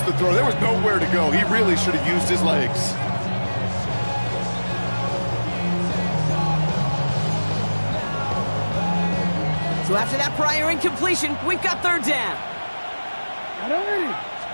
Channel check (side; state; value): both; inverted; correlation -1.00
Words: the throw. There was nowhere to go. He really should have used his legs. So after that prior incompletion, we've got 3rd down.